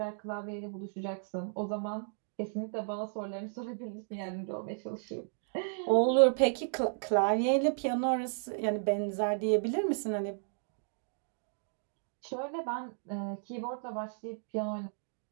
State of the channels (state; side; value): silent; left; digital silence